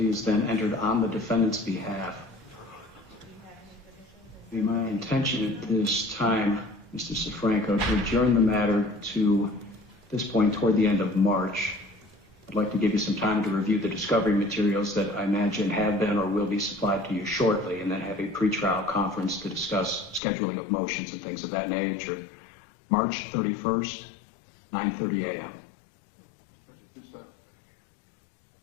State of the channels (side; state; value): right; drops out; at 20.2 s